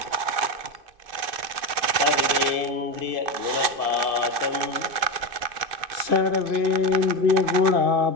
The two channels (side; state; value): left; late; 2.6 ms